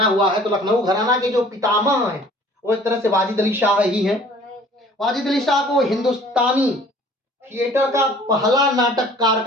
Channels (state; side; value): normal; both; correlation 0.51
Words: हुआ है। तो लखनऊ घराना के जो पितामह हैं वो एक तरह से वाजिद अली शाह ही हैं। वाजिद अली शाह को हिंदुस्तानी थिएटर का पहला नाटककार